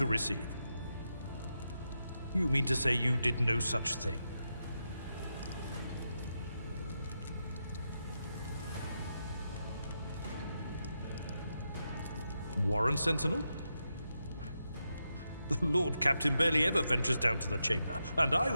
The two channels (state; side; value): inverted; both; correlation -0.86